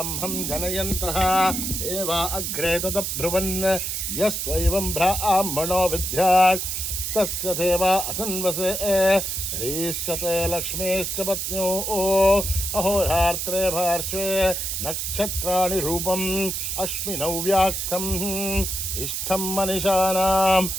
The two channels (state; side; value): noise; right; hiss, 2 dB below the sound